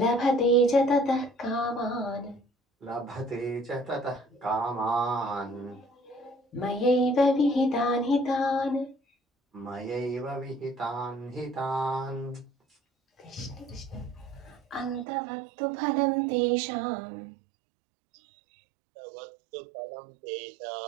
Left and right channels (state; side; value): drops out; left; at 15.1 s